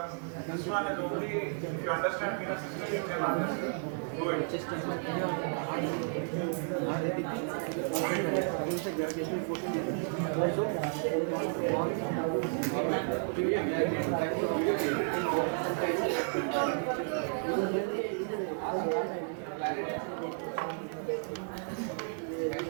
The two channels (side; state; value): left; silent; 56 dB below the other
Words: this one is only, if you understand venous system, you can understand. Do it. Chest is heart रहती थी से gravitational forces लगती थी सो wall back